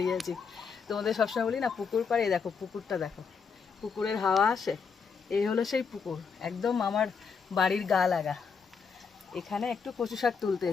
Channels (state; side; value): quieter; right; 5.8 dB